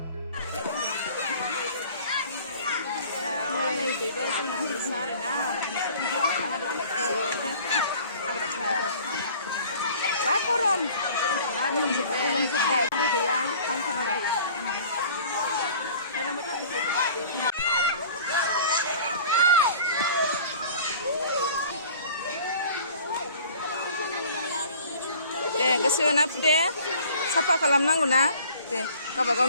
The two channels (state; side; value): inverted; both; correlation -0.48